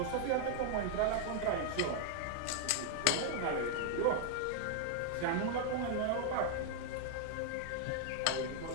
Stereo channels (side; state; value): both; different; correlation 0.00